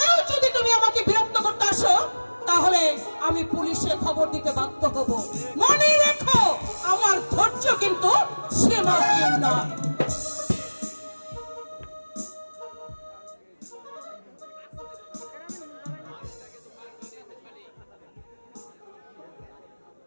যদি তুমি আমাকে বিরক্ত করতে আসো, তাহলে আমি পুলিশে খবর দিতে বাধ্য হব। মনে রেখো, আমার ধৈর্য কিন্তু সীমাহীন নয়।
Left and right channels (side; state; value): both; inverted; correlation -1.00